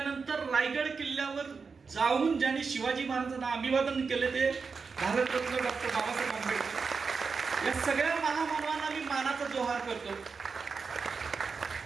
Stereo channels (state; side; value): quieter; left; 5.1 dB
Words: रायगड किल्ल्यावर जाऊन ज्यांनी शिवाजी महाराजांना अभिवादन केले ते भारतरत्न डॉक्टर बाबासाहेब आंबेडकर. या सगळ्या महामानवांना मी मानाचा जोहार करतो.